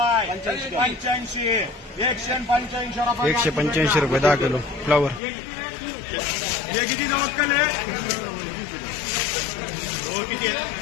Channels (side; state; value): right; drops out; at 5.2 s